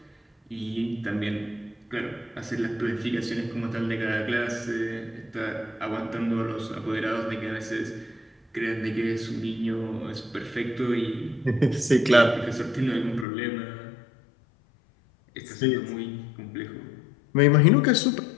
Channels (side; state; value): right; drops out; at 13.2 s